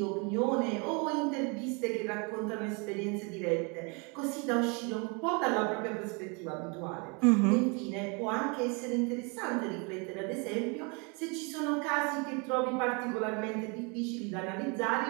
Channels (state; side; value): quieter; left; 32.0 dB